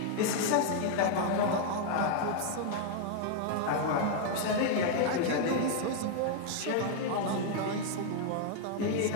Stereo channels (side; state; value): both; different; correlation 0.00